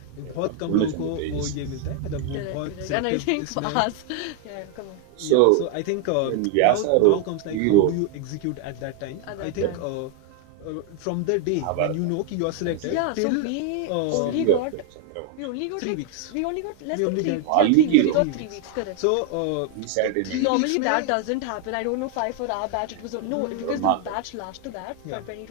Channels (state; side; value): different; both; correlation 0.00